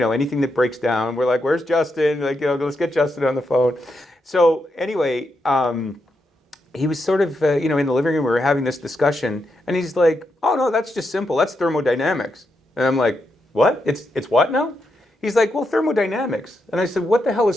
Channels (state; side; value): normal; both; correlation 0.83